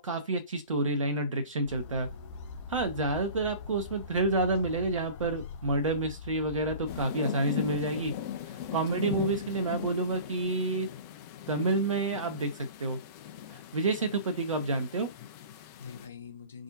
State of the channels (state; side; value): inverted; both; correlation -0.40